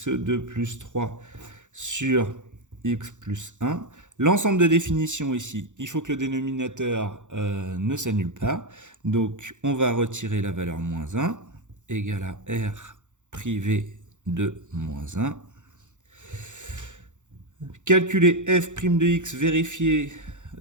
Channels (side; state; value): left; late; 0.85 ms